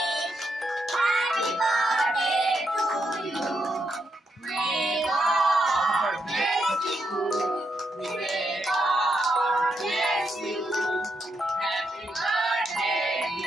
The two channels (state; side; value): normal; both; correlation 0.81